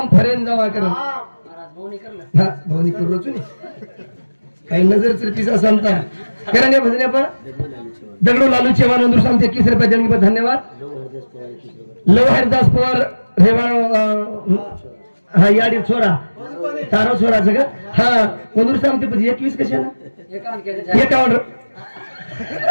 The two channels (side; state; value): both; inverted; correlation -1.00